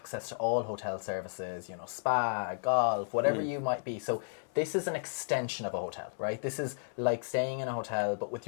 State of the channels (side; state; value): right; silent; digital silence